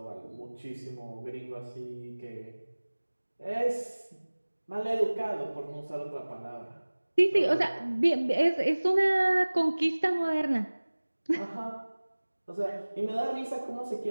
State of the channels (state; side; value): inverted; both; correlation -1.00